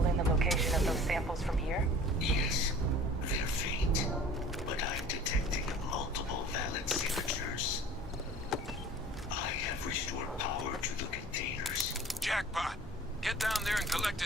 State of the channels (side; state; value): both; normal; correlation 0.45